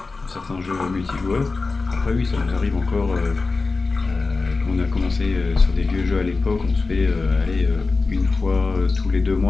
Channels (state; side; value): quieter; right; 3.9 dB